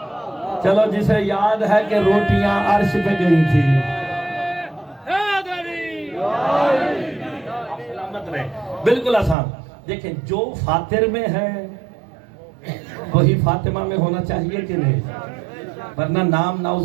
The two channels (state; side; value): drops out; left; at 9.3 s